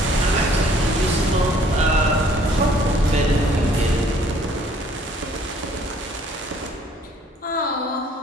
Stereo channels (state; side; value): normal; both; correlation 0.59